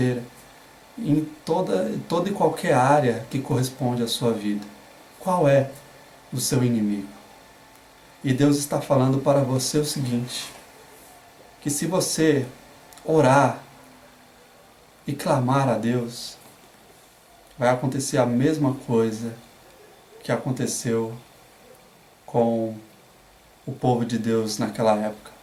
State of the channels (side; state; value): both; identical; correlation 1.00